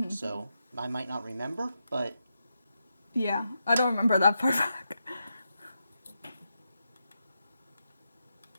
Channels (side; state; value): both; inverted; correlation -0.86